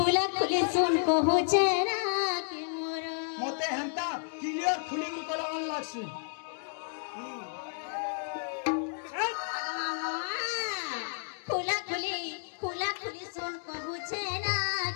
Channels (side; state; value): right; silent; digital silence